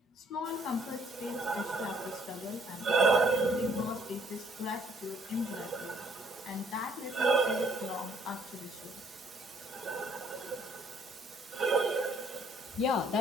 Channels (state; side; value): normal; both; correlation 0.64